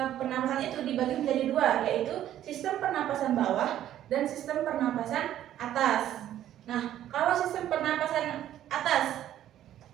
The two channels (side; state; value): left; quieter; 11.9 dB